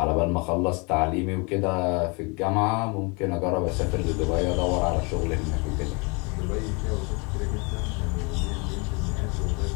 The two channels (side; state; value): right; quieter; 31.0 dB